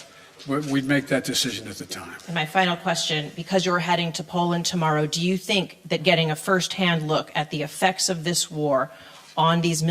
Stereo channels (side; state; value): both; identical; correlation 1.00